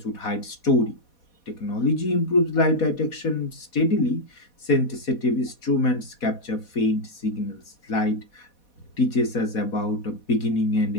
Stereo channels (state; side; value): late; right; 4.2 ms